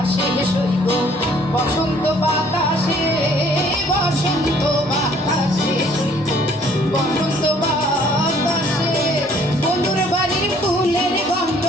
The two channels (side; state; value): both; normal; correlation 0.59